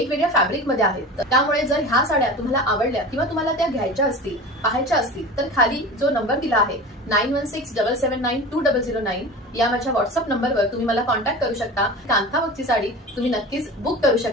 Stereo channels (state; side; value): normal; both; correlation 0.33